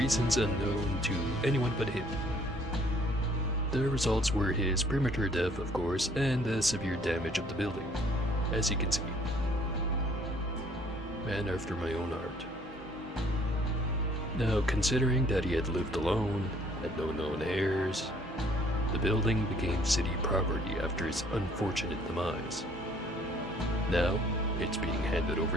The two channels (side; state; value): both; normal; correlation 0.60